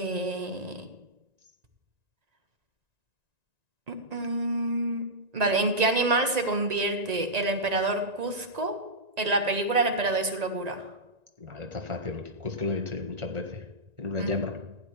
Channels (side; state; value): left; late; 1.9 ms